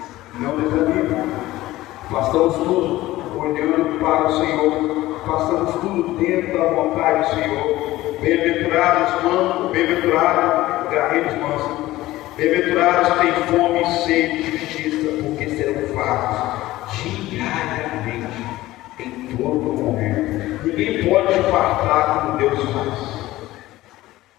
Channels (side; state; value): right; quieter; 16.8 dB